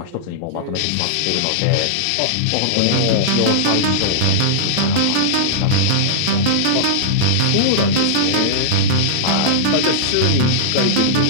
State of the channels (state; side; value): different; both; correlation -0.02